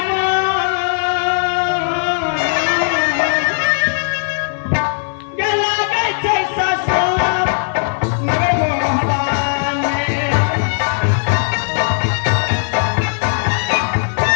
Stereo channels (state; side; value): silent; right; 62 dB below the other